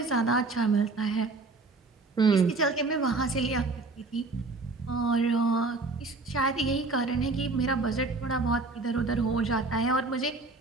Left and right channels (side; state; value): left; quieter; 3.5 dB